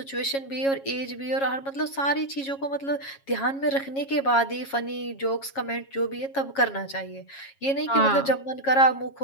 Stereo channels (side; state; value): right; late; 7.3 ms